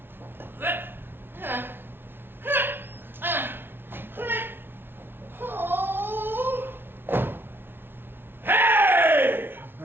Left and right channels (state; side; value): late; left; 0.11 ms